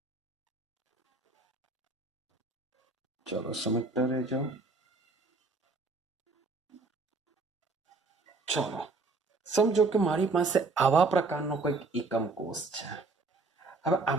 ચલો સમજતા રહેજો. ચલો સમજો કે મારી પાસે આવા પ્રકારનો કંઈક એકમ કોષ છે. હવે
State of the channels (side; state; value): left; quieter; 3.6 dB